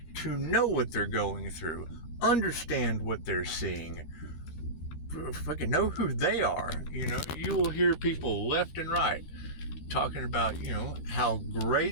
to know what they're going through, understand what they're seeing, fucking know who they are. You will hear people left and right talking about, how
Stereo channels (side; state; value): right; late; 13 ms